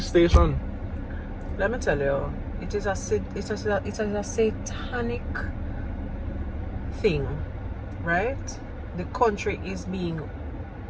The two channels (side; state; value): both; identical; correlation 1.00